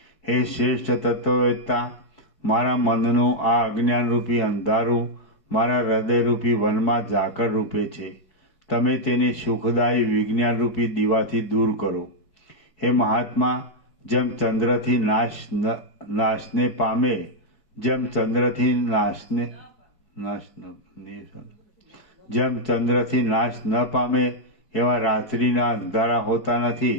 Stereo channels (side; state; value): right; late; 4.6 ms